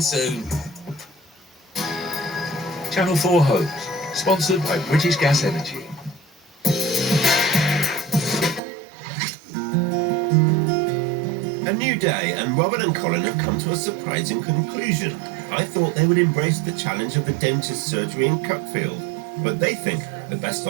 soon. Channel 4 Homes, sponsored by British Gas Energy. A new day, and Robin and Colin have come to a surprising conclusion. I thought they would embrace the challenge of the dentist surgery in Cuckfield, but they think the best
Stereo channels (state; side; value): drops out; left; at 8.6 s